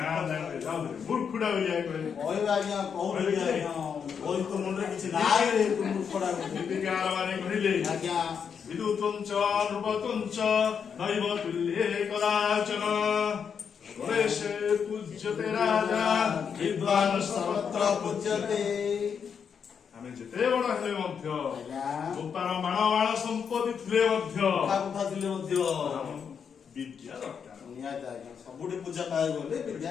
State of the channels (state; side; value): quieter; right; 6.9 dB